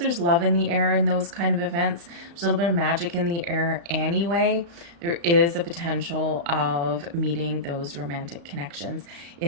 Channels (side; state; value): left; late; 35 ms